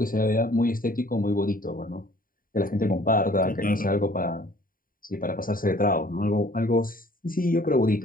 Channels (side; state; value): right; late; 0.41 ms